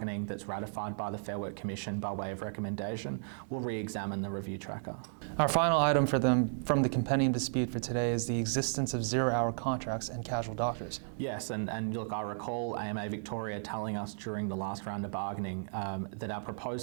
that's ratified by the Fair Work Commission by way of recommendation, we'll re-examine the review tracker. Our final item from the compendium dispute for today is the existence of zero-hour contracts and casual doctors. Yes, and look, I recall AMA Victoria telling us during the last round of bargaining that our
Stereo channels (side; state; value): left; silent; digital silence